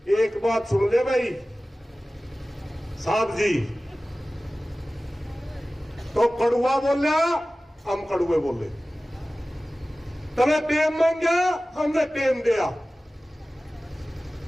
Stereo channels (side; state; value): both; normal; correlation 0.97